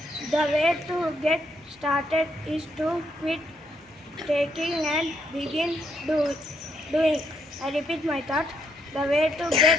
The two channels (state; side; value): normal; both; correlation 0.75